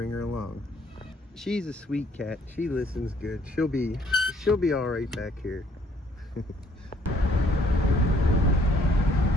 her along. She's a sweet cat. She listens good. She'll be all right back here.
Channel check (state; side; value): normal; both; correlation 0.63